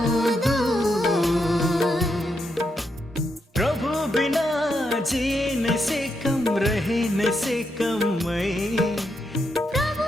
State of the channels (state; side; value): normal; both; correlation 0.82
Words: दूर प्रभु बिना जीने से कम रहने से कम मैं